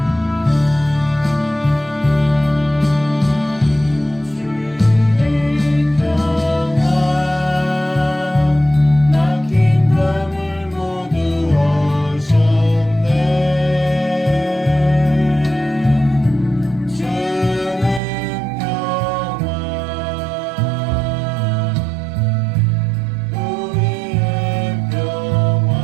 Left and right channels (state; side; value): drops out; left; at 18.0 s